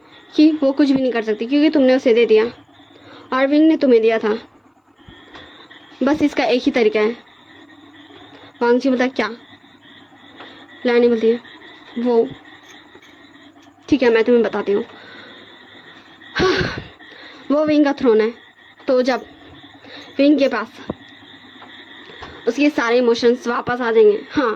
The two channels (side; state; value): both; identical; correlation 1.00